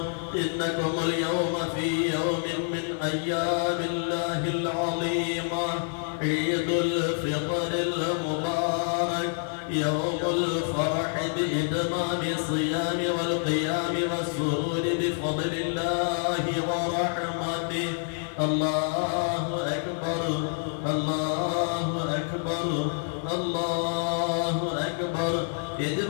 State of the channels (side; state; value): right; silent; digital silence